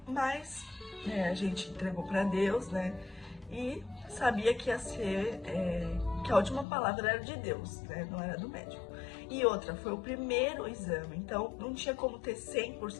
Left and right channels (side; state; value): right; drops out; at 6.7 s